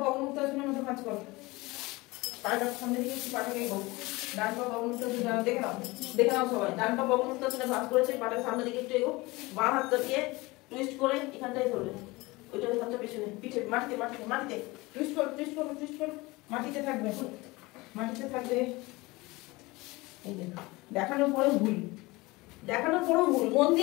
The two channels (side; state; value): right; quieter; 22.3 dB